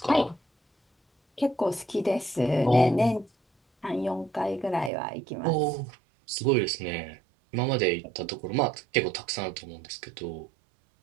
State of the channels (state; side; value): drops out; left; at 4.9 s